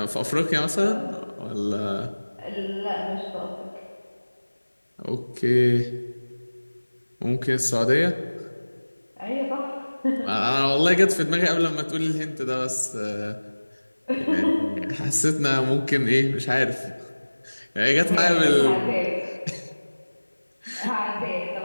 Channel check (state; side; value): inverted; both; correlation -1.00